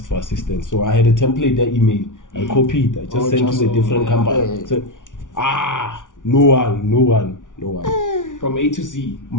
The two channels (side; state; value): right; late; 0.87 ms